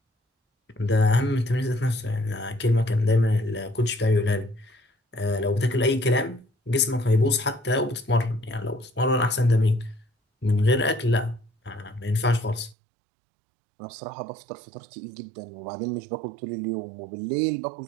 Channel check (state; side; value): drops out; left; at 12.8 s